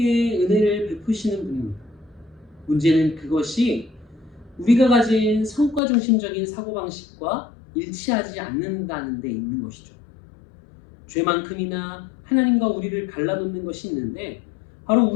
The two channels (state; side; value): drops out; right; at 5.8 s